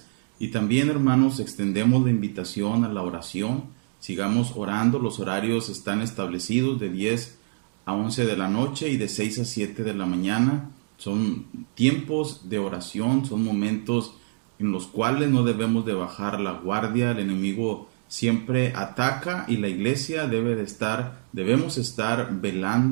Y también, hermanos, extendemos la invitación a la oración. Sigamos orando, los horarios están establecidos de 10 a 11 de la noche y de 6 a 7 de la mañana. Son tiempos de oración, son momentos en los cuales no debemos de bajar la guardia. El enemigo siempre ataca y la iglesia debemos estar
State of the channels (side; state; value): left; silent; digital silence